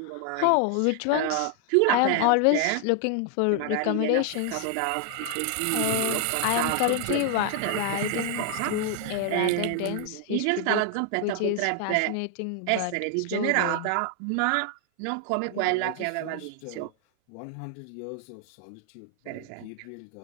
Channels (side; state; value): both; different; correlation 0.00